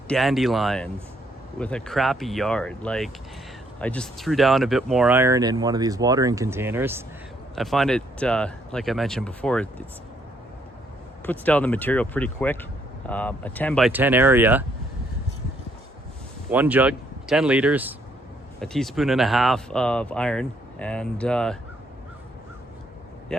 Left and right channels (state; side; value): normal; both; correlation 0.70